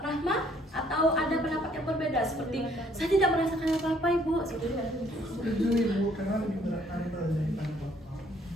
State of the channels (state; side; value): normal; both; correlation 0.63